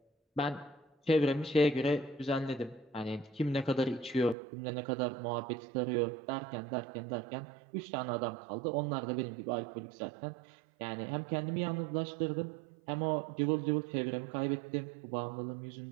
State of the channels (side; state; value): left; drops out; at 4.4 s